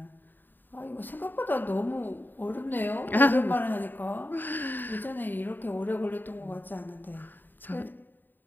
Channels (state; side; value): late; right; 0.091 ms